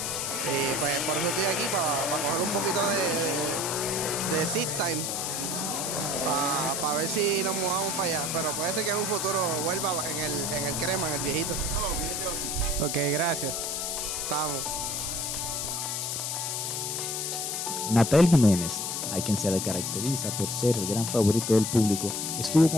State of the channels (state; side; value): noise; left; hiss, 2 dB below the sound